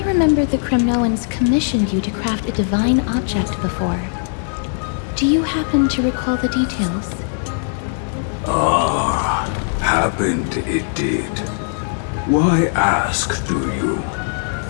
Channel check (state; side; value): silent; right; digital silence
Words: remember the Kremnoans commissioned you to craft a divine object before. Do you happen to recall the details? Ah, happened it did. Why ask, do you?